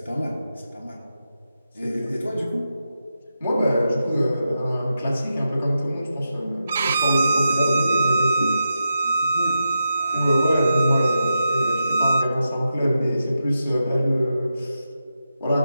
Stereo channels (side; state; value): both; inverted; correlation -0.88